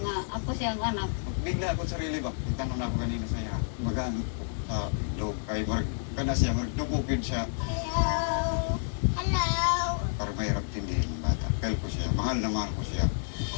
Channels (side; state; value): right; silent; 58 dB below the other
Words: ako siya ang anak. Bigla ako sarili ba? Itanong na ako kanina sa iya. Magaan sa loob kay Mark. Kana siya, magdubukid siya. Hello. Para mahirap tindihin ng bata. Kaya ko siya, mahal na mahal ko siya.